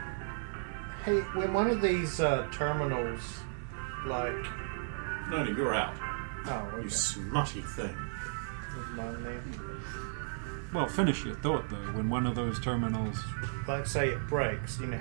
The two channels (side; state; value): left; silent; digital silence